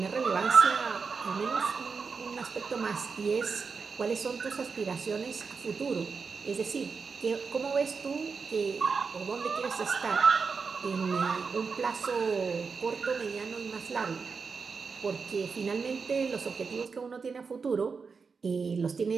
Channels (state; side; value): quieter; left; 5.1 dB